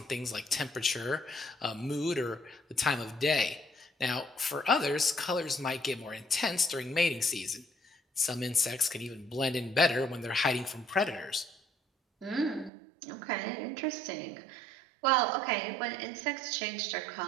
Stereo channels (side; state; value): left; drops out; at 12.7 s